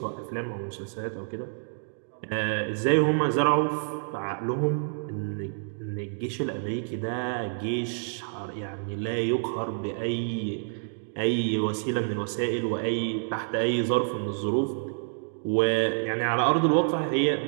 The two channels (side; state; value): left; silent; digital silence